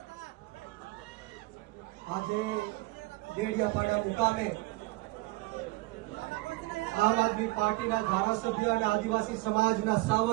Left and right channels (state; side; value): quieter; left; 21.5 dB